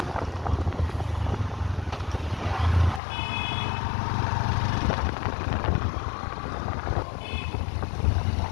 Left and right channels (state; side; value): drops out; right; at 3.0 s